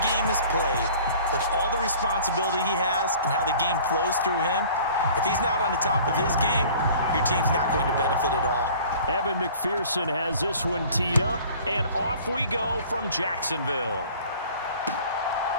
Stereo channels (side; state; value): both; inverted; correlation -0.48